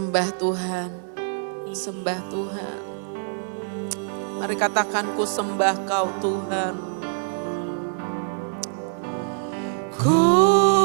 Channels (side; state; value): left; silent; digital silence